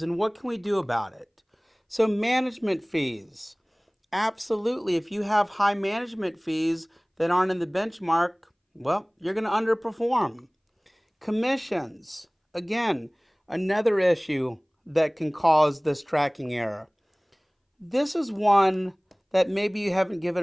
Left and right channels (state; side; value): identical; both; correlation 1.00